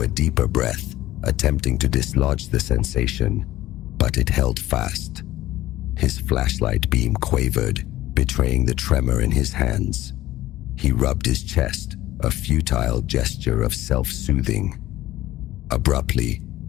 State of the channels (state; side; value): quieter; right; 15.6 dB